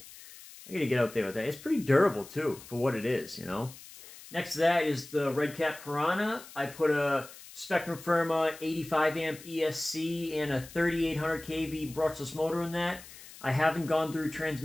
I gotta get out there with that. It's pretty durable, too, for what it is, you know? Next to that is the Red Cat Piranha. I put a Spectrum Firma 85 amp ESC and a 3800 kV brushless motor in that. I haven't gone through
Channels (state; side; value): noise; left; hiss, 18 dB below the sound